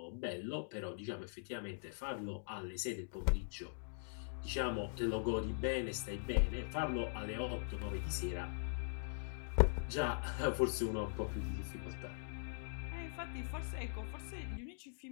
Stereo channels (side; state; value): right; silent; digital silence